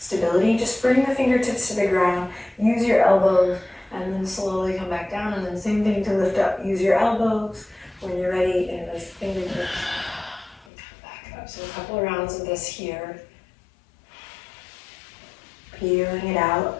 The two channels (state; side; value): drops out; right; at 10.7 s